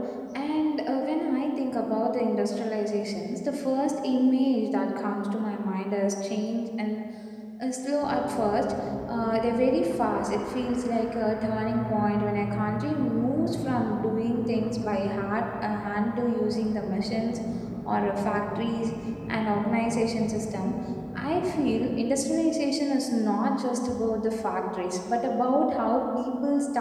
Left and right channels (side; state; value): both; identical; correlation 1.00